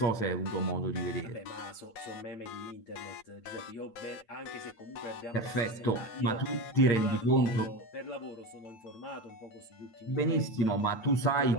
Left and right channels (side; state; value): right; late; 9.1 ms